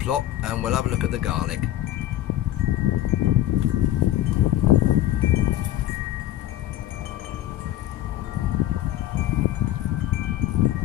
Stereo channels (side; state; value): right; quieter; 13.5 dB